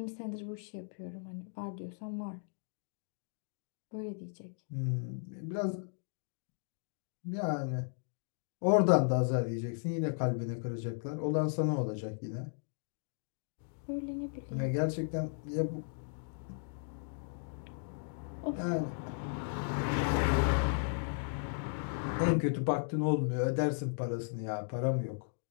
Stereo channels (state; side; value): silent; right; digital silence